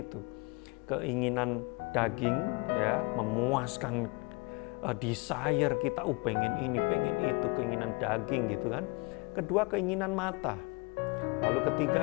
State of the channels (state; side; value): quieter; right; 28.8 dB